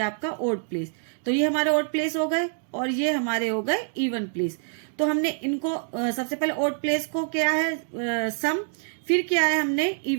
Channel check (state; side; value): silent; left; digital silence